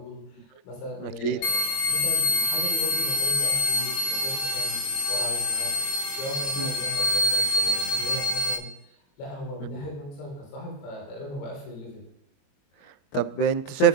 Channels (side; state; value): right; late; 22 ms